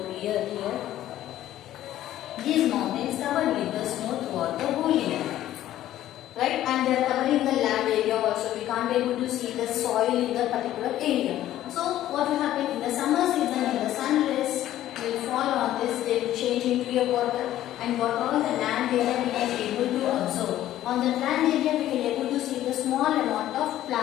here. covered with the snow throughout the whole year. Right, and they are covering the land area also. We can't be able to see the soil in the particular area. So what will happen in the summer season, in the sun rays will fall on this, they will change into a water, and what all the land area we can able to observe. On the land area we can able to see the small amount of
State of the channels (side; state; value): right; quieter; 13.2 dB